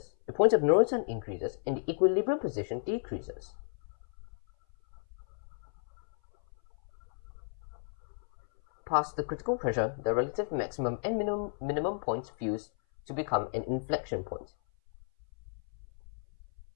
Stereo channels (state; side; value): silent; right; 55 dB below the other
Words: the point of no return increases and the equilibrium position decreases. Past the critical pressure, the relative maximum and minimum points fuse to become an inflection point.